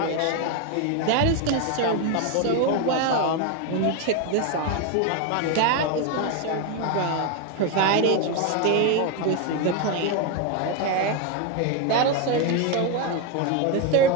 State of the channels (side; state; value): both; different; correlation 0.02